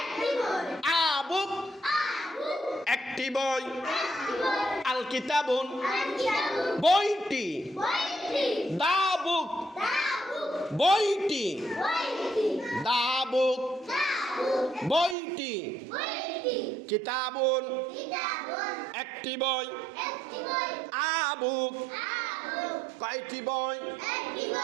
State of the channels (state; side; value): drops out; left; at 15.2 s